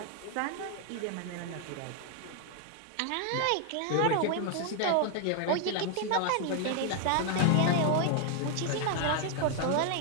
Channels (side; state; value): both; different; correlation 0.00